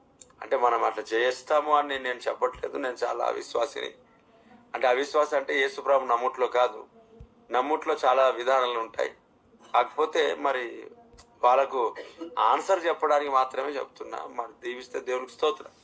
అంటే మనం అట్లా చేస్తాము అని నేను చెప్పట్లేదు. నేను చాలా అవిశ్వాసిని. అంటే అవిశ్వాసం అంటే యేసుప్రభు నమ్ముట్లో కాదు, నమ్ముట్లో చాలా విధానాలు ఉంటాయి. కాకపోతే మరి వాళ్ళకు ఆన్సర్ చెప్పడానికి మాత్రమే చెప్తున్నా. మరి దీవిస్తే దేవుడికి స్తోత్రం.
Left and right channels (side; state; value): both; identical; correlation 1.00